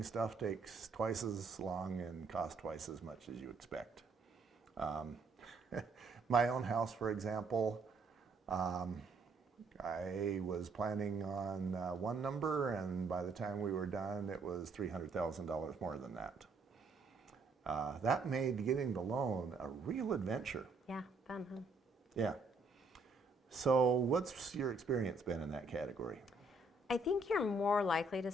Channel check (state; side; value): quieter; left; 3.6 dB